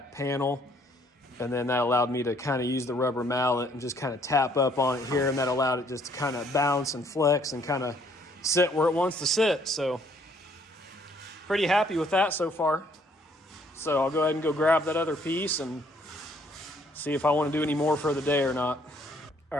panel. And then that allowed me to kind of use the rubber mallet and just kind of tap up on it here. And that allowed it just to kind of bounce and flex and kind of sit where it wants to sit. So pretty happy with that so far. So I'll go ahead and go grab that other piece and see if I want to do any more for the day or not. All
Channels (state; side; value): normal; both; correlation 0.64